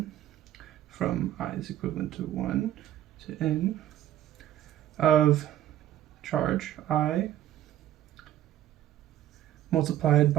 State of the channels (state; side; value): quieter; left; 12.7 dB